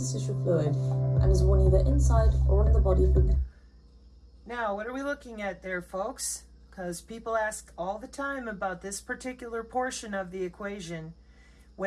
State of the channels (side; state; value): both; identical; correlation 1.00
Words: fluid and is worn either inside or on the body for... Now, what are we looking at there, folks? Because people ask all the time about this particular portion of the equation.